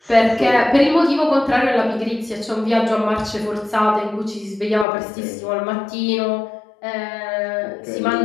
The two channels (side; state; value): right; drops out; at 4.9 s